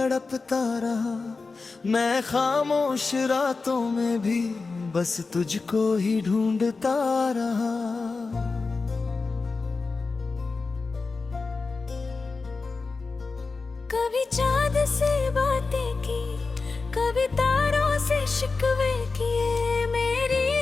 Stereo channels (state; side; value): quieter; right; 4.1 dB